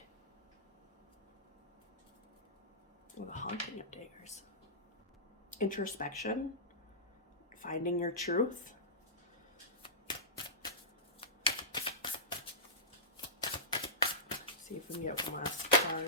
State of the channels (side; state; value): both; normal; correlation -0.17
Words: Well, the Haunting of Daggers. Introspection. Finding your truth. See if we can get one last